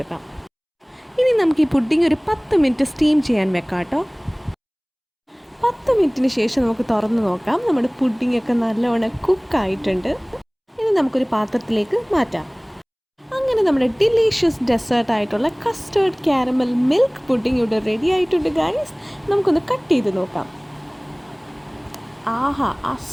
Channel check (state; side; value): identical; both; correlation 1.00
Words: ഇനി നമുക്ക് ഈ പുഡിംഗ് ഒരു 10 മിനിറ്റ് സ്റ്റീം ചെയ്യാൻ വെക്കാം കേട്ടോ. 10 മിനിറ്റിന് ശേഷം നമുക്ക് തുറന്ന് നോക്കാം. നമ്മുടെ പുഡിംഗ് ഒക്കെ നല്ലവണ്ണം കുക്കായിട്ടുണ്ട്. ഇനി നമുക്കൊരു പാത്രത്തിലേക്ക് മാറ്റാം. അങ്ങനെ നമ്മുടെ ഡിലീഷ്യസ് ഡെസേർട്ടായിട്ടുള്ള കസ്റ്റേർഡ് കാരമൽ മിൽക്ക് പുഡിംഗ് ഇവിടെ റെഡി ആയിട്ടുണ്ട് ഗൈസ്. നമുക്കൊന്ന് കട്ട് ചെയ്ത് നോക്കാം. ആഹാ, ആ